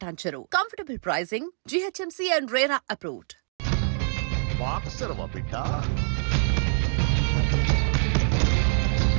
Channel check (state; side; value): silent; left; digital silence